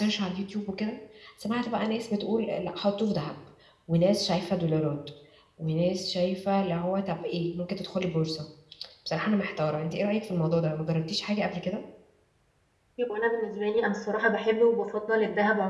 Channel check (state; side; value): identical; both; correlation 1.00